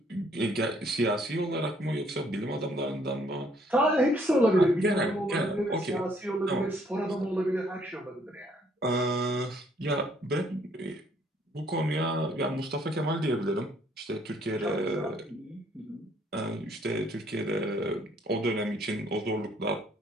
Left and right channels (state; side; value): normal; both; correlation 0.65